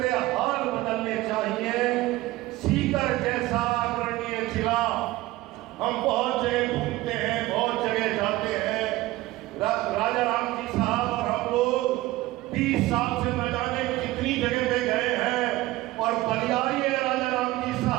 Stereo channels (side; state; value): left; quieter; 18.0 dB